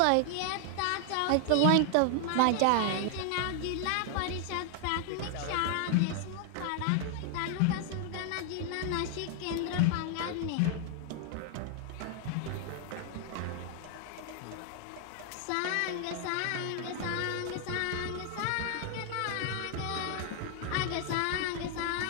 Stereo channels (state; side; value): different; both; correlation 0.00